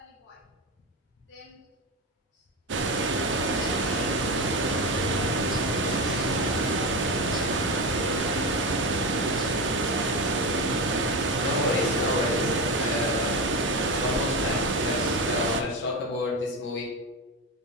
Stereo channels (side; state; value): both; normal; correlation 0.18